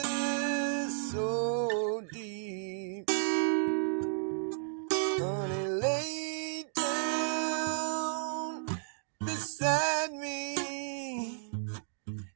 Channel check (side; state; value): left; silent; digital silence